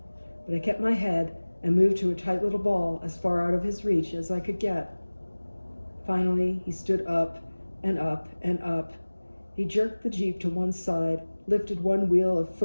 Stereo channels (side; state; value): both; inverted; correlation -1.00